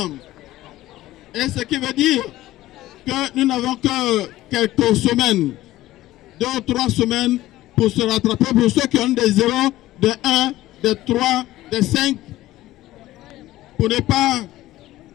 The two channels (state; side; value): quieter; right; 15.9 dB